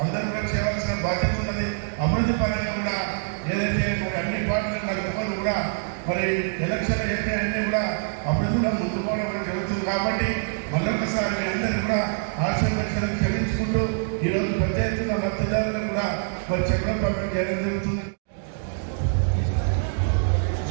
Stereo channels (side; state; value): left; silent; digital silence